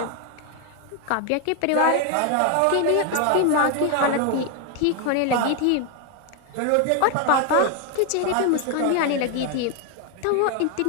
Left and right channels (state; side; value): different; both; correlation 0.01